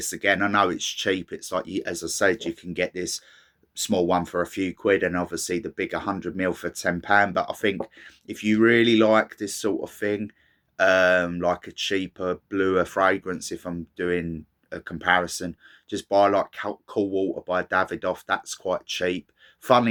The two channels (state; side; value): identical; both; correlation 1.00